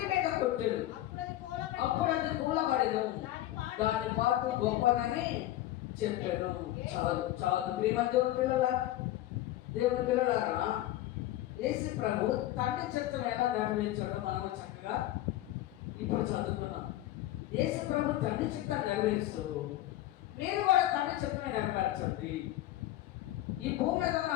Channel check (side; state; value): right; quieter; 14.8 dB